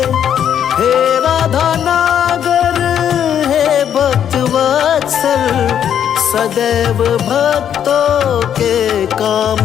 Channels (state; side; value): quieter; right; 9.2 dB